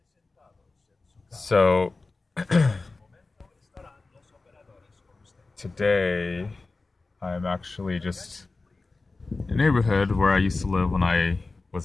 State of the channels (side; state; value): right; quieter; 3.6 dB